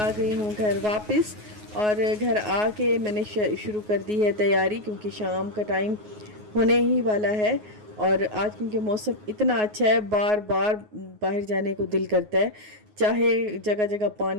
गई हूँ घर वापस। और घर आके मैंने शुरू कर दी है तैयारी क्योंकि शाम का टाइम होने ही वाला है। और आज क्योंकि मौसम इतना अच्छा है, बार बार बाहर जाने को दिल करता है। चाहे जगह जगह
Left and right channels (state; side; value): late; left; 9.5 ms